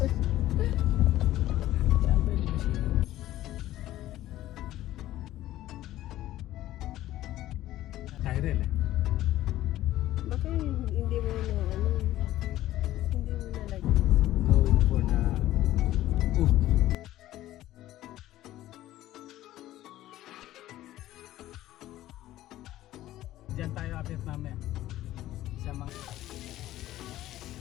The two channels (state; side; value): quieter; right; 14.6 dB